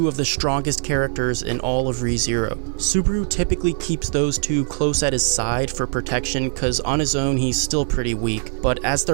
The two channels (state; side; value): silent; left; digital silence